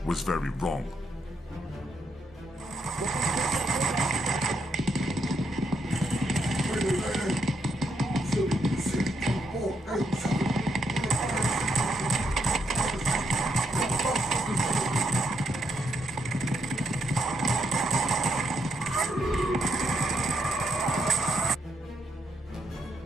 was very wrong.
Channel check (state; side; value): normal; both; correlation 0.78